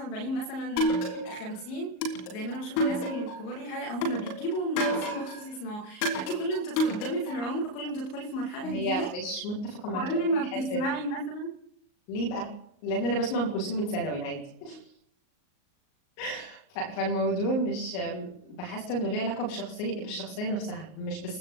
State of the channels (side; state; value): right; late; 38 ms